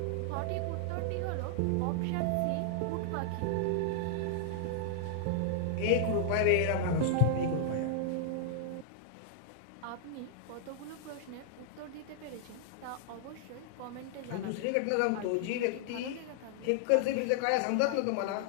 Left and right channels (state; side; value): different; both; correlation -0.01